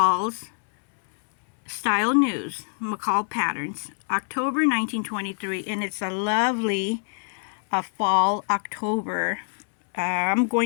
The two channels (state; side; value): silent; right; 59 dB below the other